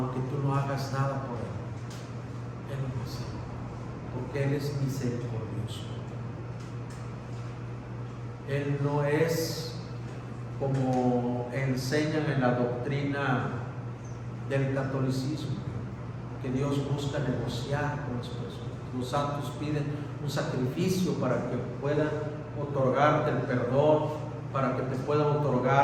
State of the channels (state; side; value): identical; both; correlation 1.00